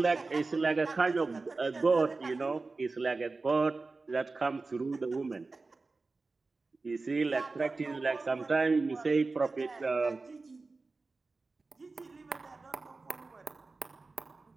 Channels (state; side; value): quieter; left; 3.7 dB